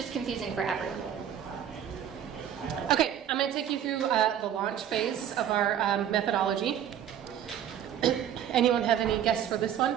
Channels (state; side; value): quieter; left; 9.9 dB